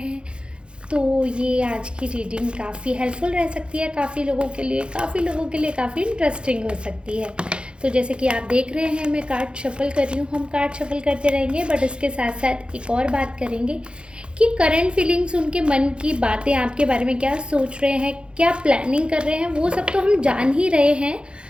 तो ये आज की रीडिंग काफ़ी हेल्पफुल रह सकती है काफ़ी लोगों के लिए, काफ़ी इंटरेस्टिंग हो सकती है। तो जैसे कि आप देख रहे हैं, मैं कार्ड शफल कर रही हूँ। हम कार्ड शफल करते रहेंगे, बट इसके साथ साथ एक और बात करेंगे कि करंट फीलिंग्स, उनके मन की बातें आपके बारे में क्या सोच रहे हैं, क्या प्लानिंग कर रहे हैं, वो सब तो हम जान ही रहे हैं।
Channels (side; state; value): left; late; 0.055 ms